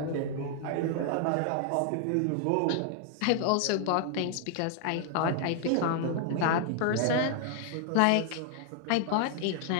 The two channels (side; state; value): both; different; correlation 0.00